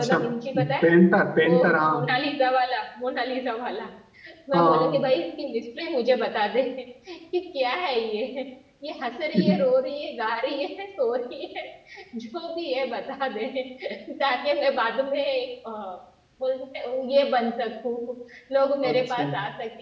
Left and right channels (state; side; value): identical; both; correlation 1.00